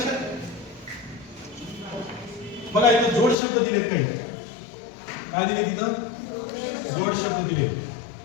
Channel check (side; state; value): right; drops out; at 3.4 s